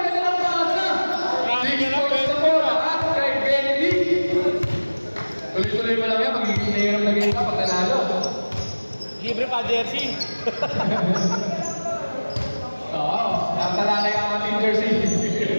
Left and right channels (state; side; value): inverted; both; correlation -1.00